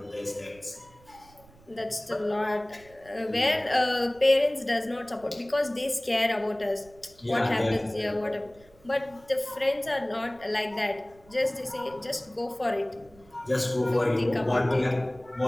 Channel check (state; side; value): noise; right; rumble, 26 dB below the sound